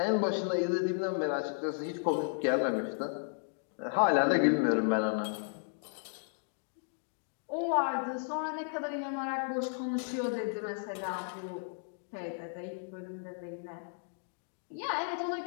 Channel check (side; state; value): right; silent; digital silence